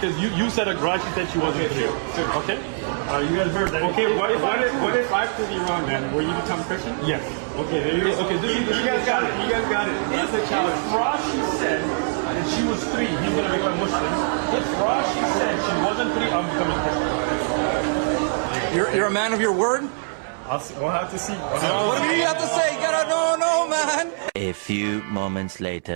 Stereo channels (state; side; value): silent; left; 63 dB below the other